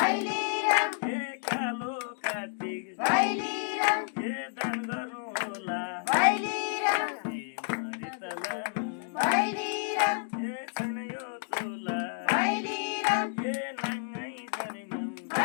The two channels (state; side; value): silent; right; digital silence